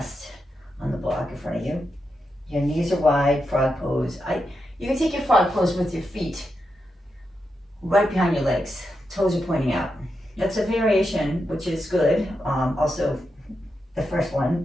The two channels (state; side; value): normal; both; correlation 0.86